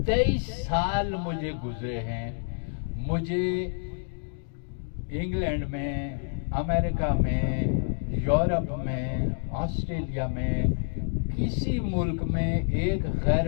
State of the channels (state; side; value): silent; right; digital silence